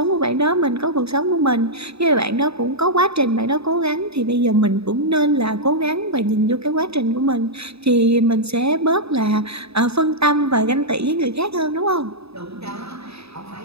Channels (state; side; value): late; left; 0.78 ms